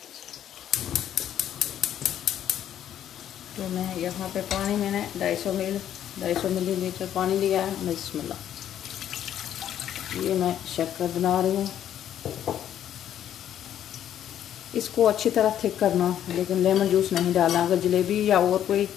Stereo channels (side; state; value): right; quieter; 10.6 dB